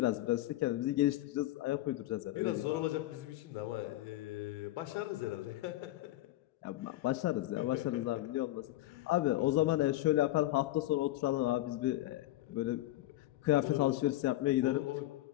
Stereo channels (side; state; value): right; quieter; 16.1 dB